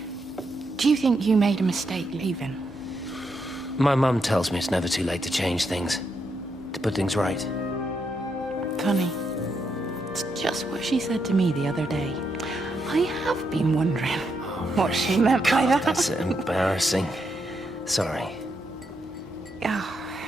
Do you think you made a mistake leaving? My mum tells me it's never too late to change things. To put things right. Funny. It's just what she said to me the other day. I have been wondering what she meant by that. That's embarrassing. Sorry.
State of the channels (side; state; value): both; normal; correlation 0.80